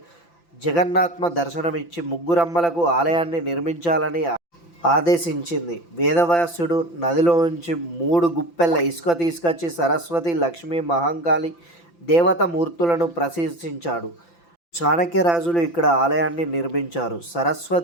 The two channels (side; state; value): right; late; 5.9 ms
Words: జగన్నాథ్మ దర్శనమిచ్చి ముగ్గురమ్మలకు ఆలయాన్ని నిర్మించాలని ఆదేశించింది. వేదవ్యాసుడు నదిలోంచి 3 గుప్పెల ఇసుక తీసుకొచ్చి సరస్వతి, లక్ష్మి, మహంకాళి దేవత మూర్తులను ప్రశంసించాడు. చాణక్యరాజులు ఇక్కడ ఆలయాన్ని నిర్మించారు.